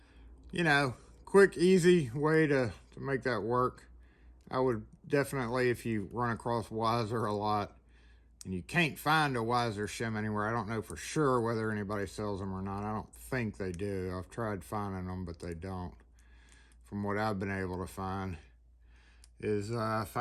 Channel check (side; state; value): both; identical; correlation 1.00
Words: you know, quick, easy way to make that work. I would definitely, if you run across Weiser a lot and you can't find a Weiser shim anywhere, I don't know for sure whether anybody sells them or not. I don't think they do. I've tried finding them, but they don't. From what I've been able to find is